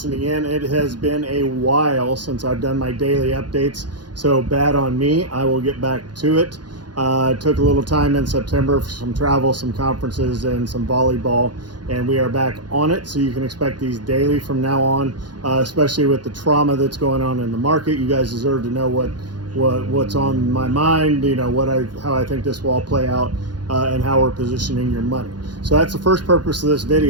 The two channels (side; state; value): left; late; 0.70 ms